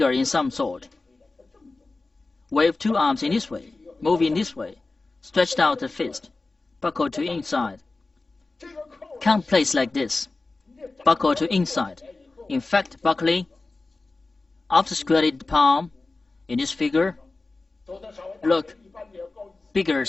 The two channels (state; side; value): quieter; right; 3.4 dB